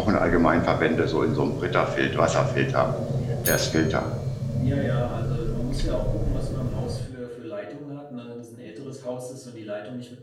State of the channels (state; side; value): identical; both; correlation 1.00